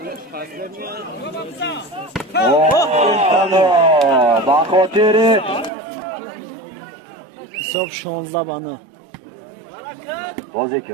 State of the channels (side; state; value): left; drops out; at 5.7 s